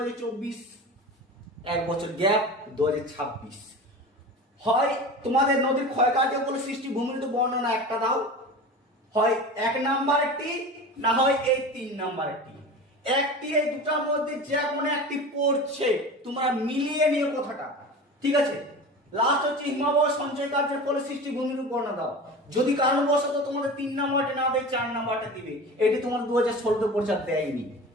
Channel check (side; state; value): both; normal; correlation 0.33